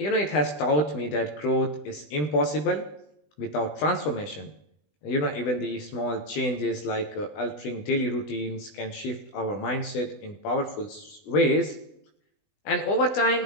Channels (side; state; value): right; late; 20 ms